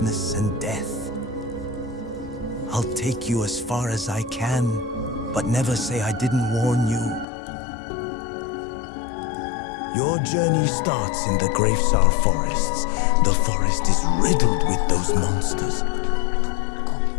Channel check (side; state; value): right; drops out; at 7.2 s